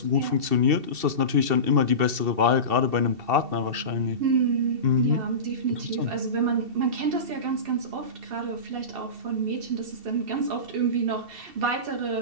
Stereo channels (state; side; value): late; left; 2.7 ms